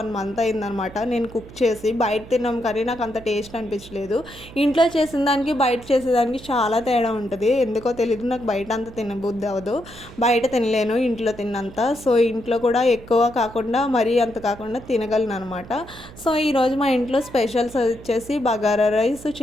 మంత్ అయిందనమాట నేను కుక్ చేసి. బయట తిన్నాం కానీ నాకు అంత టేస్ట్ అనిపించలేదు. ఇంట్లో చేసిన దానికి, బయట చేసేదానికి చాలా తేడా ఉంటది. ఎందుకో తెలీదు, నాకు బయట అంత తినబుద్ధి అవ్వదు. బయట తినలేను ఇంట్లో తిన్నంత. సో, ఇంట్లో కూడా ఎక్కువ కాకుండా మరీ అంత కాకుండా తినగలను అనమాట. సో, ఈరోజు మా ఇంట్లో స్పెషల్స్ వచ్చేసి bagara rice,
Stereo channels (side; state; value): right; noise; hum, 18 dB below the sound